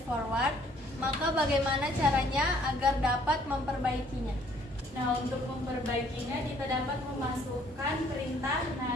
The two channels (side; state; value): both; normal; correlation 0.61